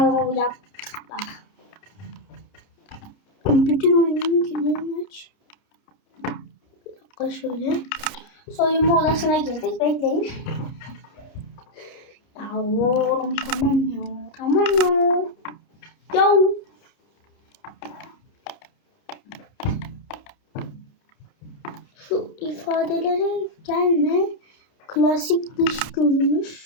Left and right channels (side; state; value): right; late; 30 ms